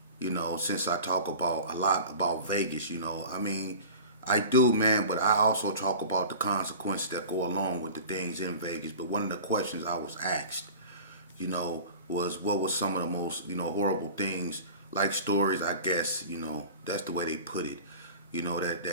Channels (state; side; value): inverted; both; correlation -0.38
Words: you know, since I talk about a lot about Vegas, you know, I mean, I do, man, but I also talk about the consequences that go along with the things in Vegas. But one of the questions I was asked, you know, was what was some of the most, you know, horrible things, like stories, I guess, you know, that's the way they put it, you know,